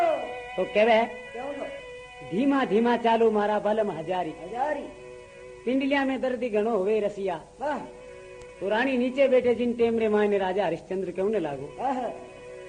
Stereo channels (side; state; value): both; identical; correlation 1.00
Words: तो कहवे धीमा धीमा चालो मारा बलम हजारी। पिंडलिया में दर्दी गणो हुए रसिया। तो रानी नीचे बैठे जिन टेमरे मायने राजा हरिश्चंद्र क्यों ने लागो।